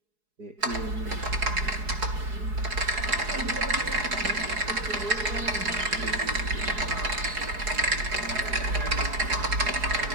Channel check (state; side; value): late; left; 4.7 ms